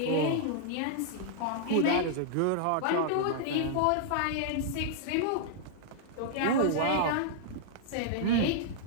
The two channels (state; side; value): different; both; correlation -0.01